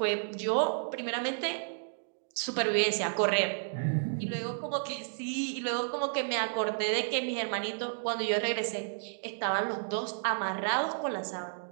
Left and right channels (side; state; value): left; silent; digital silence